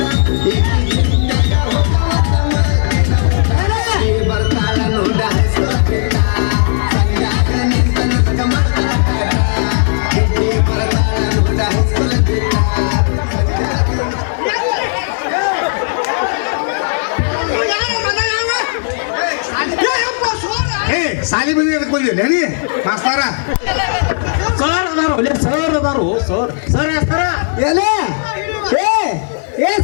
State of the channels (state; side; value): silent; right; digital silence